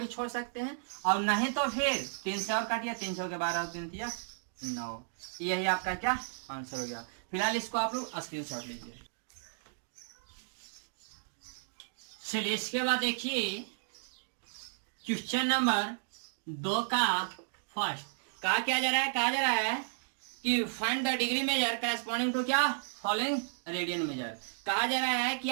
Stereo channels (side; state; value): left; silent; digital silence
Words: छोड़ सकते हैं और नहीं तो फिर 3 से और काटिए, 3 के 12 और 3 दिया 9। यही आपका क्या आंसर हो गया। फिलहाल इसको आप लोग स्क्रीनशॉट लीजिए। चलिए इसके बाद देखिए क्वेश्चन नंबर 2 का फर्स्ट कहा क्या जा रहा है, कहा जा रहा है कि find the degree measure corresponding to क्या फॉलोइंग रेडियन मेजर। कहा जा रहा है कि